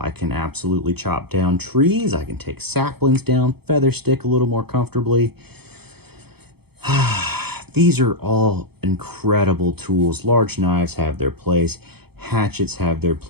I can absolutely chop down trees. I can take saplings down, feather stick a little more comfortably. These are all incredible tools. Large knives have their place. Hatchets have their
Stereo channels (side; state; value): left; late; 0.97 ms